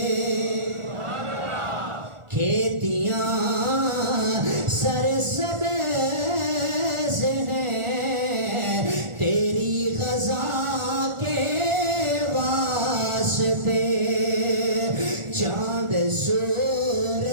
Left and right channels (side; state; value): left; late; 1.4 ms